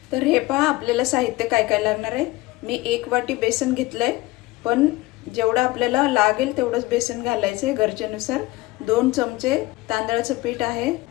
तर हे पहा, आपल्याला साहित्य काय काय लागणार आहे। मी 1 वाटी बेसन घेतलंय, पण जेवढं आपल्याला लागेल तेवढंच बेसन घालायचं आहे गरजेनुसार। 2 चमचे तांदळाचं पीठ आहे,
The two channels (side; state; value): right; quieter; 19.7 dB